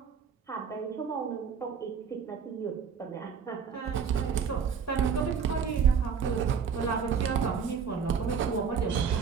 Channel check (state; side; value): quieter; left; 6.5 dB